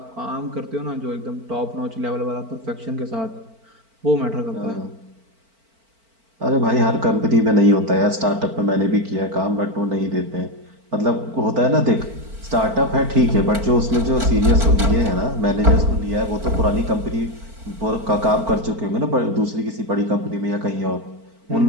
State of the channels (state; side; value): late; left; 4.5 ms